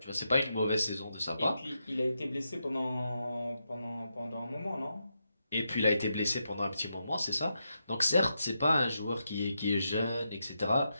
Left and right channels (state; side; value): inverted; both; correlation -0.85